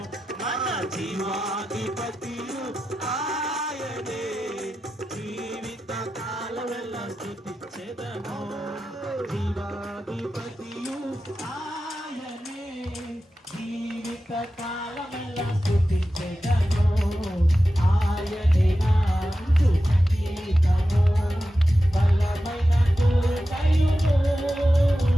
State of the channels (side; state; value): both; normal; correlation 0.92